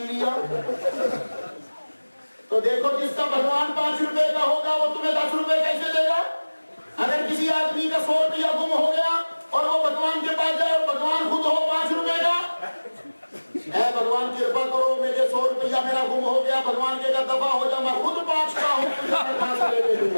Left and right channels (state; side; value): inverted; both; correlation -1.00